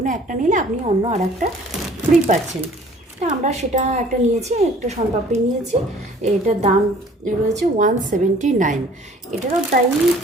একটা নিলে আপনি অন্য আর একটা ফ্রি পাচ্ছেন। তা আমরা সেটা একটা নিয়েছি, একটা শনপাপড়ি নিয়েছি। এটার দাম রয়েছে 179। এটারও তাই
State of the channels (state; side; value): normal; both; correlation 0.53